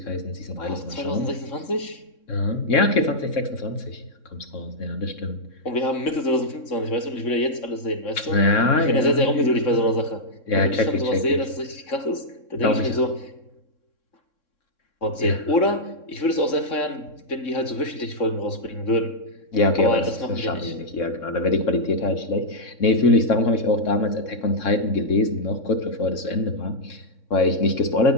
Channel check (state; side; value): late; right; 3.6 ms